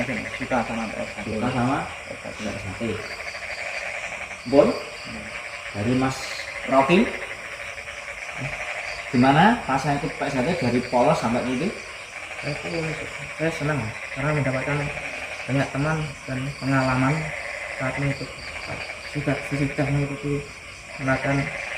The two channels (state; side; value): identical; both; correlation 1.00